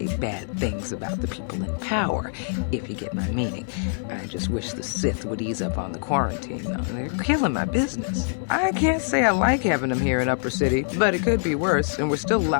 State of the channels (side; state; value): right; silent; 62 dB below the other